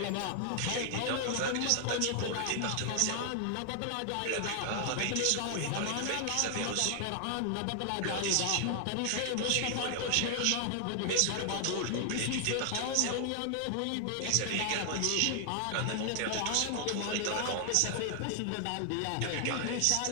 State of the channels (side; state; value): both; different; correlation 0.00